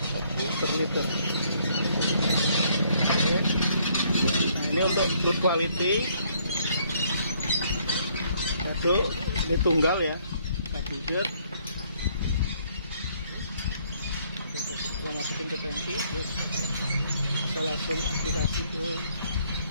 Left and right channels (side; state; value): both; inverted; correlation -0.66